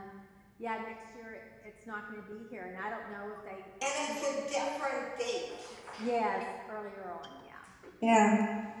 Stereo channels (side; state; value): both; identical; correlation 1.00